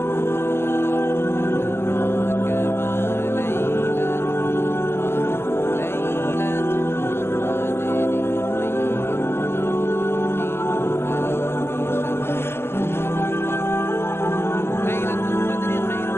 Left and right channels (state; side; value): late; right; 0.12 ms